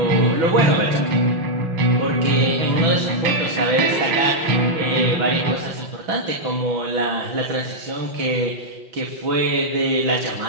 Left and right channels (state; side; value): late; left; 5.9 ms